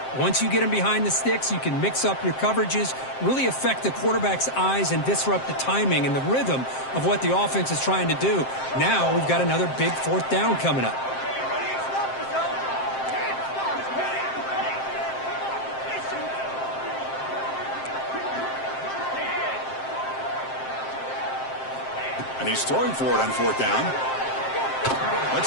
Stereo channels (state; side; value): late; right; 7.6 ms